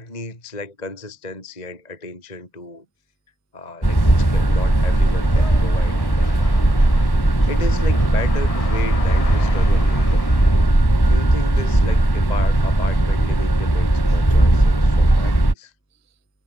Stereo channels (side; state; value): right; late; 1.1 ms